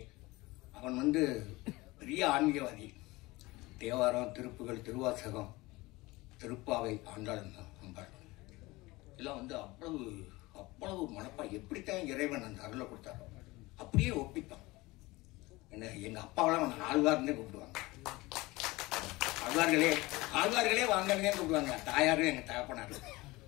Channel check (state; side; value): quieter; right; 21.3 dB